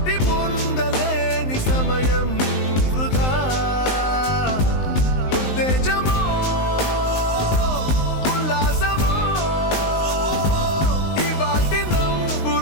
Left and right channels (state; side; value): late; right; 19 ms